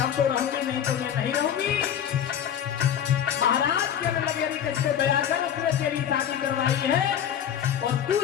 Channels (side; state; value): right; quieter; 9.3 dB